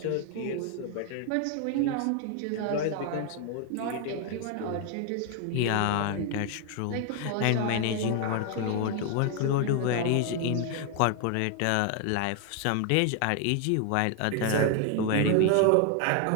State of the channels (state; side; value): different; both; correlation 0.00